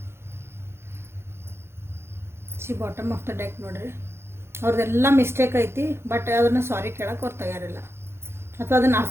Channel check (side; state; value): left; late; 0.12 ms